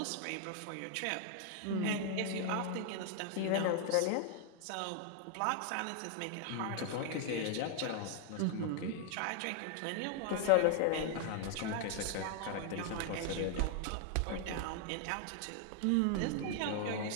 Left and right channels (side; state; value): both; different; correlation 0.00